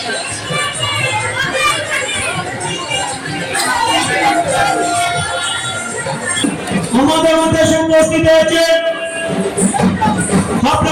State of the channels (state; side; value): identical; both; correlation 1.00